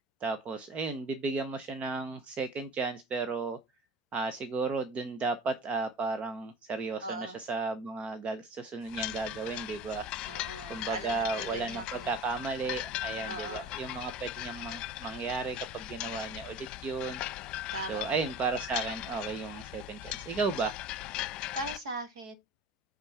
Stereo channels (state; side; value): normal; both; correlation 0.38